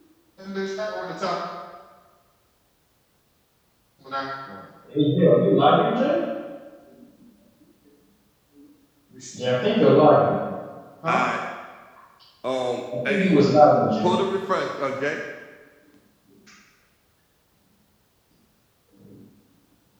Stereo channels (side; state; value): both; identical; correlation 1.00